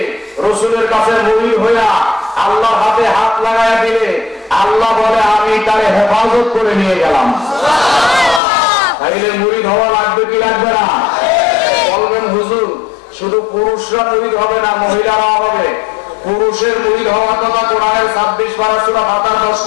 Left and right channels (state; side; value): drops out; right; at 8.4 s